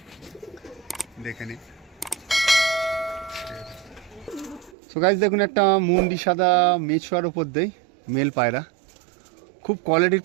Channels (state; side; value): drops out; left; at 4.8 s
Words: দেখে নিন। সো গাইস দেখুন একটা মুন্ডি সাদা মেছোয়ার ওপর দেই মেল পায়রা, খুব কোয়ালিটির